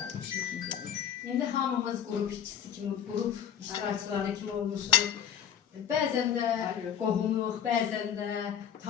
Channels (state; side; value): quieter; right; 8.9 dB